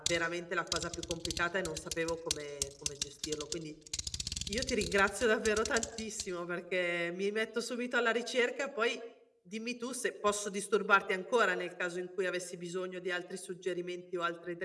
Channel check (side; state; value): both; identical; correlation 1.00